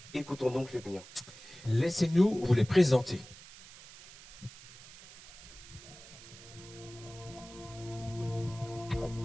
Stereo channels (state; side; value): noise; right; hiss, 18 dB below the sound